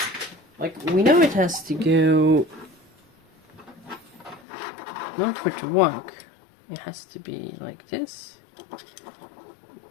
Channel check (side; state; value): right; drops out; at 4.4 s